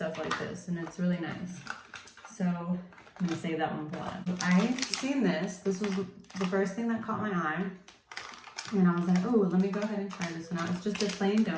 like this, and it's really nice. So I'm gonna save that one for last. I seen this. This was the first thing that caught my eye, and I was like, oh, let me go ahead and try this one out. It's just a plain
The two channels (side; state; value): both; identical; correlation 1.00